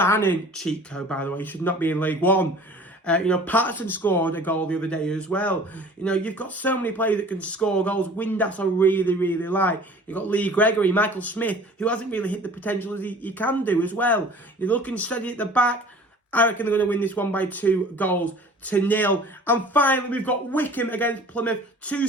cheat code by the way, should not be in League One. You know, Patterson scored a goal the other day as well. You know, you've got so many players that can score goals. Windass I really, really like. You've got Lee Gregory, Michael Smith, who hasn't really hit the potential as he can do as well. You're looking steady at the back. I reckon they're going to win this one by 2-0. And finally, we've got Wycombe against Plymouth. Two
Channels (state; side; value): normal; both; correlation 0.46